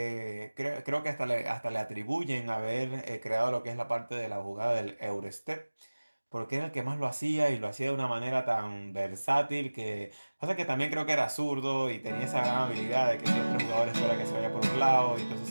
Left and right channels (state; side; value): inverted; both; correlation -1.00